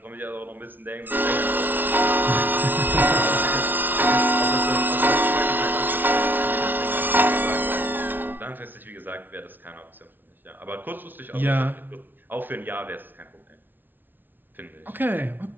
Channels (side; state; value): left; late; 0.091 ms